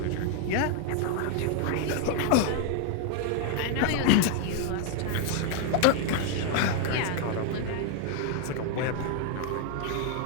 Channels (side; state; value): both; different; correlation 0.00